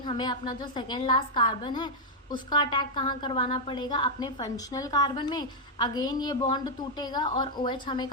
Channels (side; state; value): both; normal; correlation -0.02